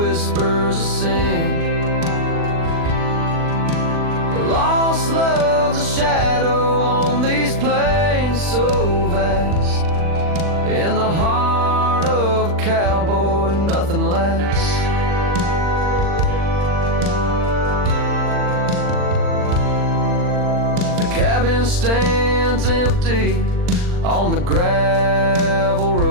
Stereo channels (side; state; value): left; late; 40 ms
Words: a sin. Lost love's a shadow on these plains so vast, in the heart of a cowboy nothing lasts. Cabin stands empty on the gravel